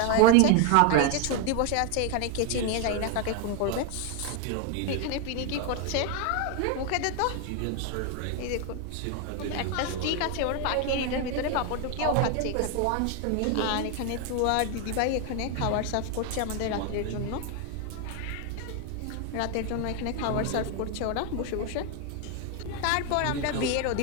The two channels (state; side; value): different; both; correlation 0.01